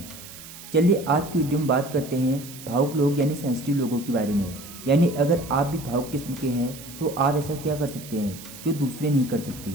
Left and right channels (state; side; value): noise; right; hiss, 15 dB below the sound